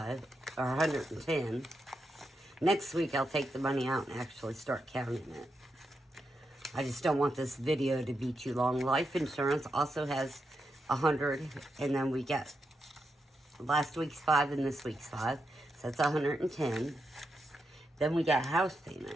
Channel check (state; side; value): normal; both; correlation 0.85